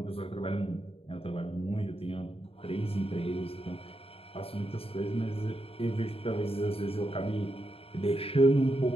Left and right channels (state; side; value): late; right; 0.28 ms